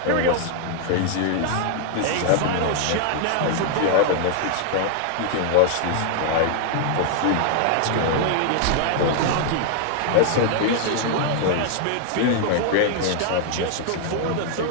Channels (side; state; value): both; different; correlation 0.00